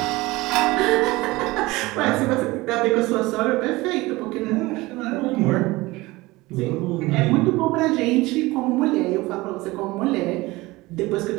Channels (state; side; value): quieter; left; 20.7 dB